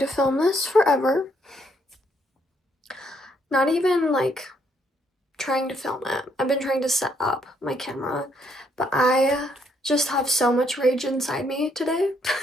film this forever. Not even like trying to film it. I've been trying to set up my camera, but I just have so much rage inside me today.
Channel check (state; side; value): normal; both; correlation 0.72